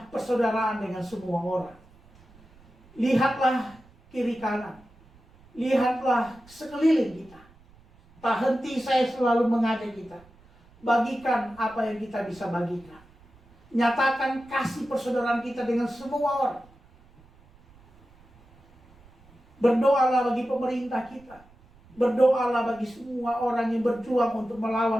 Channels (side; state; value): right; noise; rumble, 27 dB below the sound